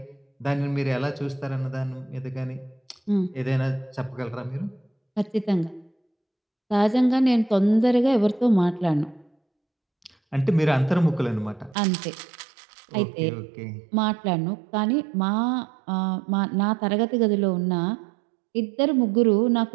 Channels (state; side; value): drops out; left; at 11.8 s